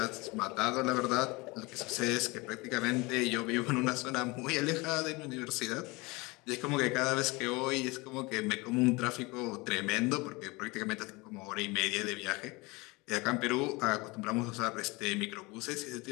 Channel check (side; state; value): right; quieter; 24.7 dB